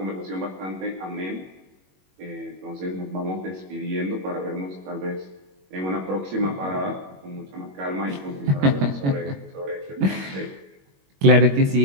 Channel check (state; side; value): late; left; 21 ms